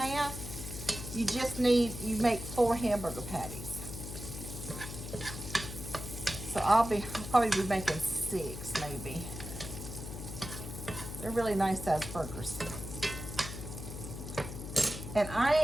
you make 4 hamburger patties. So I'll probably be making 6 maybe. They're really nice sized burgers. And I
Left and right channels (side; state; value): left; noise; hum, 8 dB below the sound